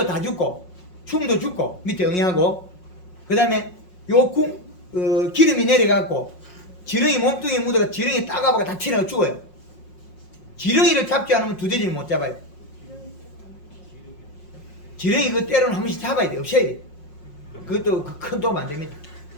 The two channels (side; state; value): right; late; 5.5 ms